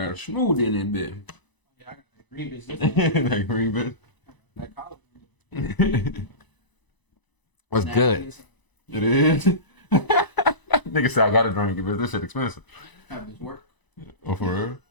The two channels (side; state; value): right; late; 1.0 ms